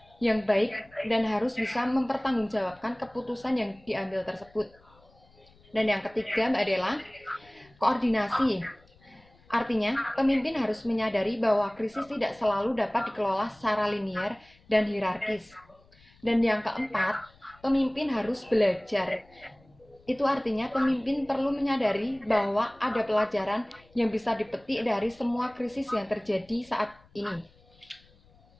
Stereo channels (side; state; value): left; noise; rumble, 29 dB below the sound